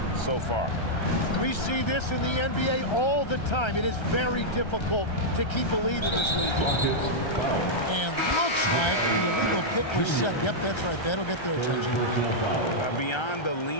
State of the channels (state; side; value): late; right; 1.3 ms